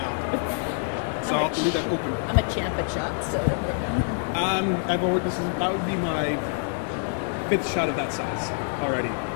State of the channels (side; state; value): right; silent; 61 dB below the other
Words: So I'll have to leave that open. I'm a champ at shots, so don't worry. That would be my 5th shot of that size already.